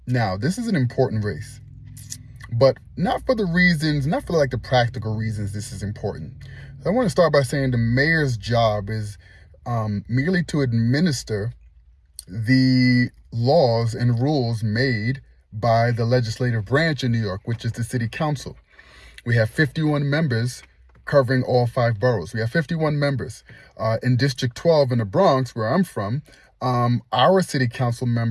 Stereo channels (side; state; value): both; identical; correlation 1.00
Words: this is an important race, but not for like the practical reasons this is important. I want to start by saying the mayor's job is merely to administer the laws and rules made by the legislative branch in New York, which is the city council. We have 51 members covering all 5 boroughs. We have 51 members. In District 12 in the Bronx, where I'm from, our city council